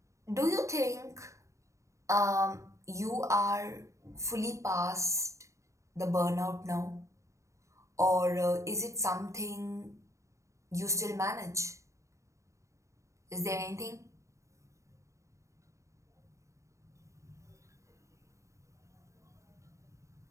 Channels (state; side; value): late; left; 0.15 ms